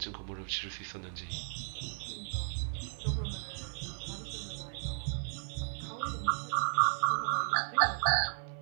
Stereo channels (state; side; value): silent; left; 54 dB below the other